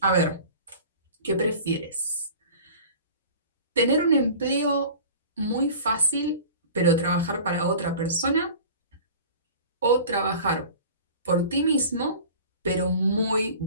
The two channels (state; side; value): inverted; both; correlation -0.41